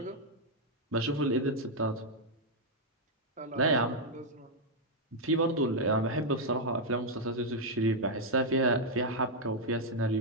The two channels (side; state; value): both; normal; correlation -0.02